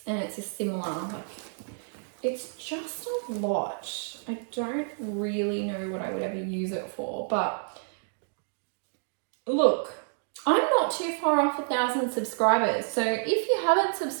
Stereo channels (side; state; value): left; silent; digital silence